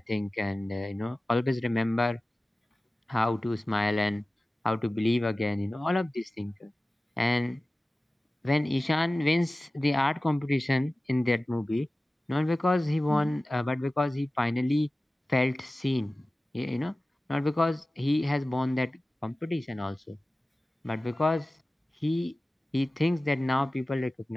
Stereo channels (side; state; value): both; normal; correlation 0.96